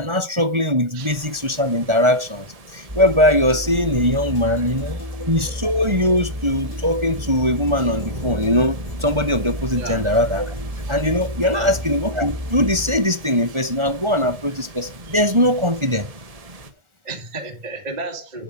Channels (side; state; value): left; late; 1.4 ms